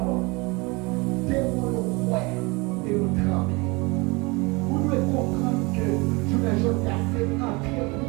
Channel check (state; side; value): quieter; left; 26.3 dB